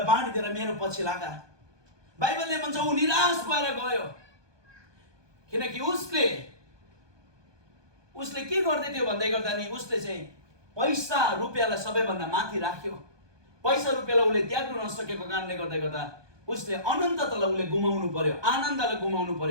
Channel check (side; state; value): left; late; 1.2 ms